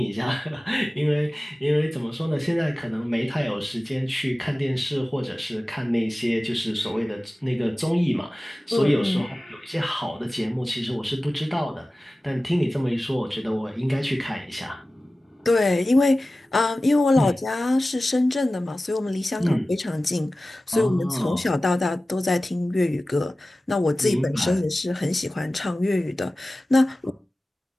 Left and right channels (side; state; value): both; normal; correlation 0.96